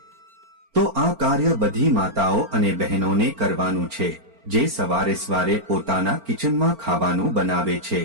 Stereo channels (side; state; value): left; late; 4.4 ms